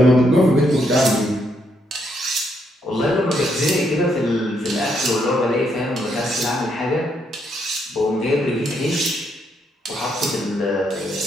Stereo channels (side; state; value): both; normal; correlation 0.76